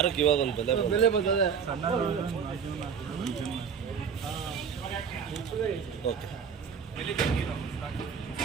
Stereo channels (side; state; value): left; quieter; 6.8 dB